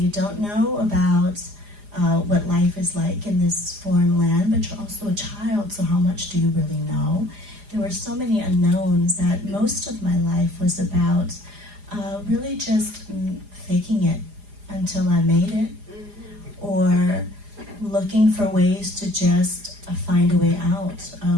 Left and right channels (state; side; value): late; left; 4.9 ms